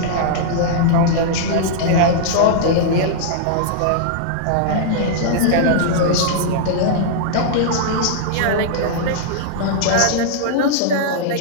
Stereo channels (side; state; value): both; different; correlation -0.02